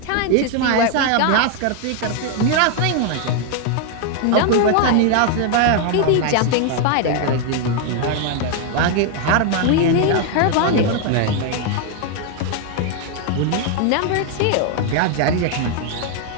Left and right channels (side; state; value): both; different; correlation 0.01